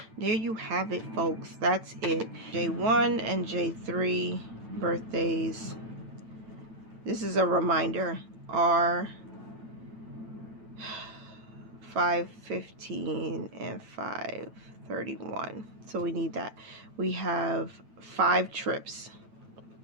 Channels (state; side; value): late; left; 9.0 ms